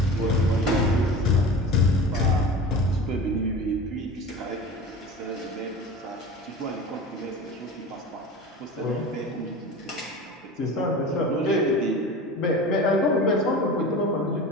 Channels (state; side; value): normal; both; correlation 0.34